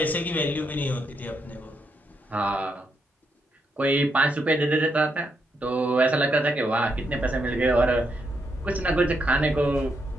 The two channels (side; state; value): both; normal; correlation 0.79